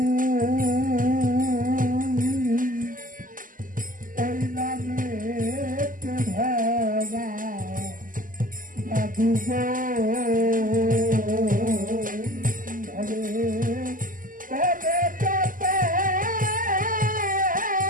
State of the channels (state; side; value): late; left; 0.40 ms